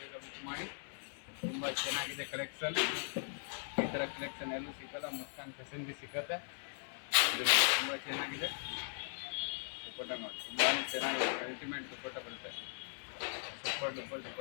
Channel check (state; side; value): silent; right; 52 dB below the other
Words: ಬುಕ್ ಮಾಡಿ. ತುಂಬ ಚೆನ್ನಾಗಿದೆ ಕಲೆಕ್ಷನ್, ಈ ಥರ ಕಲೆಕ್ಷನ್ ಎಲ್ಲೂ ಸಿಕ್ಕಲ್ಲ, ಮುಸ್ಕಾನ್ ಫ್ಯಾಷನ್ಗೆ ಸಿಕ್ಕತ್ತೆ. ಇದು ತುಂಬ ಚೆನ್ನಾಗಿದೆ. ದುಪ್ಪಟ್ಟ ನೋಡಿ ತುಂಬಾ ಚೆನ್ನಾಗಿದೆ, ಅಲ್ಟಿಮೇಟ್ ದುಪ್ಪಟ್ಟ ಬರುತ್ತೆ. ಸೂಪರ್ ದುಪ್ಪಟ್ಟ